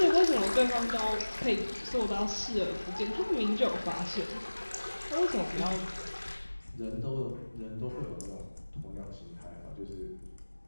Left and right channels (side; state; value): both; inverted; correlation -1.00